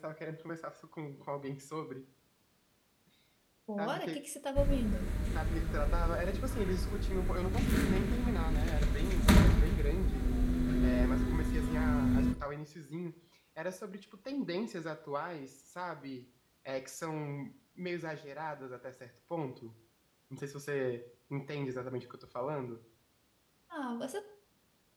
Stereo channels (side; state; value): both; identical; correlation 1.00